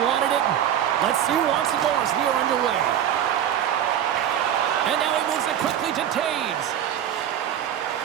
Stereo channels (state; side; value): quieter; left; 10.2 dB